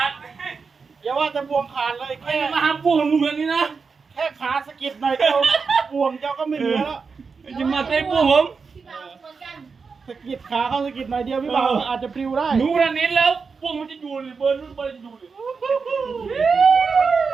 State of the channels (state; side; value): quieter; left; 5.1 dB